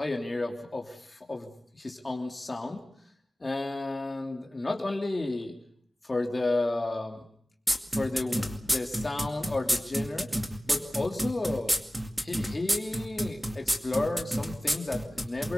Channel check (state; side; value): normal; both; correlation 0.97